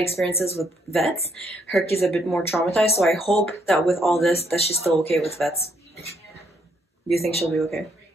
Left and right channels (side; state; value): both; normal; correlation 0.71